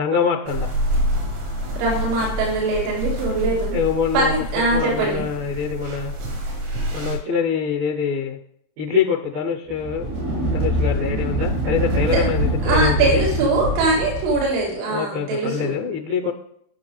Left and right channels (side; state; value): left; late; 27 ms